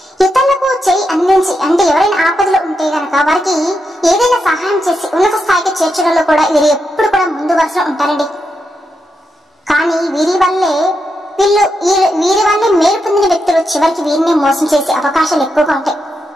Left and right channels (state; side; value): normal; both; correlation 0.84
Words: ఇతరులకు చేయి అందించి అంటే ఎవరైనా ఆపదలో ఉంటే గనక వారికి ఏదైనా సహాయం చేసి ఉన్నత స్థాయికి చేర్చడంలో కూడా వీరు ఎప్పుడు కూడా ముందు వరుసలో ఉంటారండి. కానీ వీరి వల్లే మేలు పొందిన వ్యక్తులు చివరికి వీరిని మోసం చేసే అవకాశాలు ఎక్కువగా ఉంటాయి.